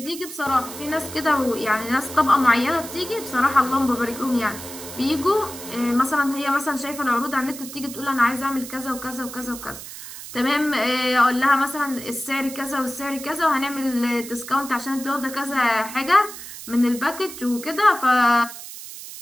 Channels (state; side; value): noise; right; hiss, 12 dB below the sound